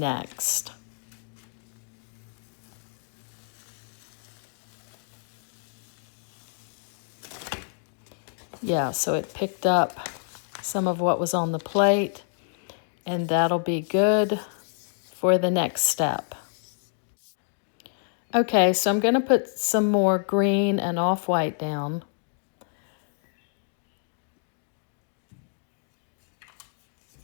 Yeah, so it picked up some of what was on the plate, and that'll be good for the next step. Okay, so I'm going to put some more green and off-white down.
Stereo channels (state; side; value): silent; right; digital silence